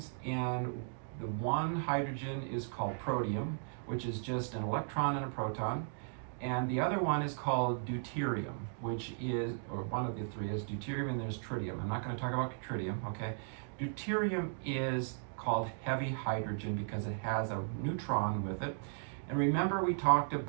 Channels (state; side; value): silent; left; digital silence